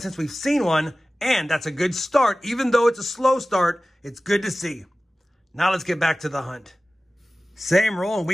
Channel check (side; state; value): both; normal; correlation 0.96